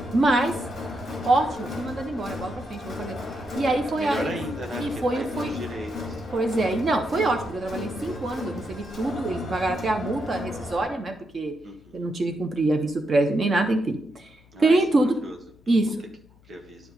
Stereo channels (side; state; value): left; noise; hum, 28 dB below the sound